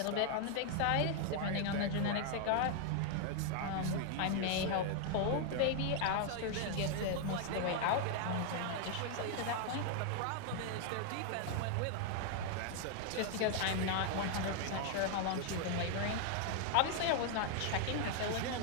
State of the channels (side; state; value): both; different; correlation 0.00